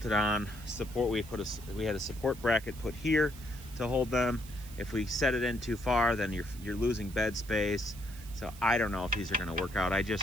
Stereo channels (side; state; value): right; noise; hiss, 18 dB below the sound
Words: on. We had a support bracket put here to hold them. If we set it in too far, then you're losing bed space. So I don't know if these are going to work out. I